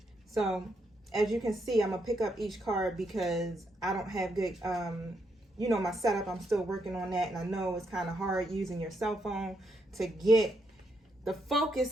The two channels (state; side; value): normal; both; correlation 0.79